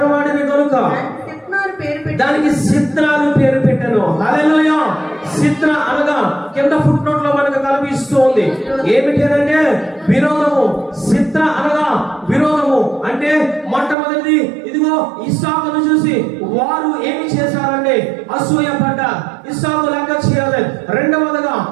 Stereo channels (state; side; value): drops out; left; at 14.0 s